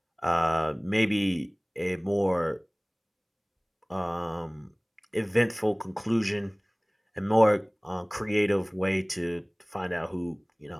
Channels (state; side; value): identical; both; correlation 1.00